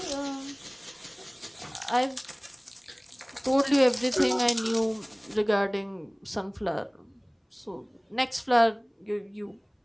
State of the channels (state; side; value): identical; both; correlation 1.00